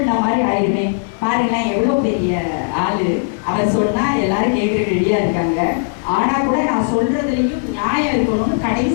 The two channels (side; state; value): right; silent; 63 dB below the other